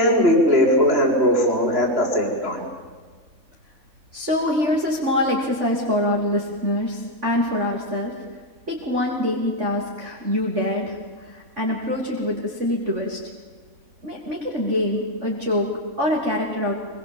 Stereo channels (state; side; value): late; left; 3.5 ms